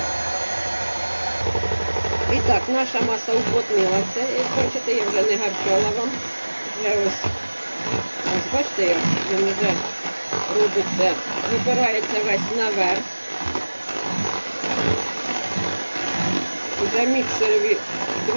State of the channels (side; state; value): both; inverted; correlation -1.00